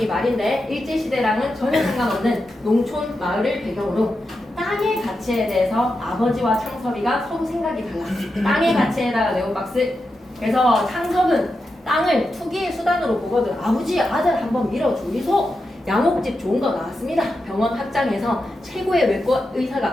말인데 일제시대랑은 전혀 상관없는 농촌 마을을 배경으로 땅의 가치에 대해서 아버지와 창섭이가 서로 생각이 달라. 땅의 가치에다가 네온박스. 그래서 창섭은 땅을 투기의 수단으로 보거든. 아버지 아들 한번 밀어주이소. 양옥집 좋은 거 나왔습니다. 병원 확장해서 최고의 외과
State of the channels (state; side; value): normal; both; correlation 0.88